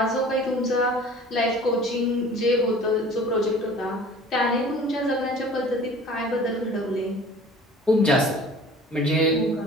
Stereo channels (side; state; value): both; normal; correlation 0.46